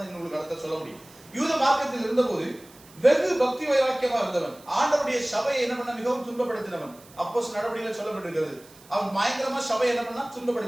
உங்களுக்கு அடுத்த சொல்ல முடியும். யூத மார்க்கத்தில் இருந்தபோது வெகு பக்தி வைராக்கியமா இருந்தவன், ஆண்டவருடைய சபையை என்ன பண்ண மிகவும் துன்பப்படுத்தினவன். அப்போஸ்தலர் நடவடிக்கையில சொல்லப்பட்டிருக்கிறது. அவன் பயங்கரமா சபை என்ன பண்ணா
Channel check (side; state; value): right; noise; hiss, 24 dB below the sound